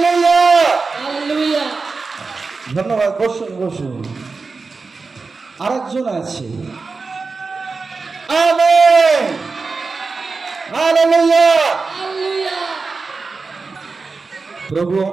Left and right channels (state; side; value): quieter; left; 4.3 dB